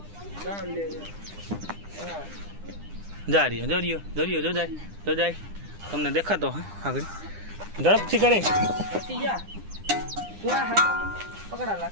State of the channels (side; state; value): left; late; 9.9 ms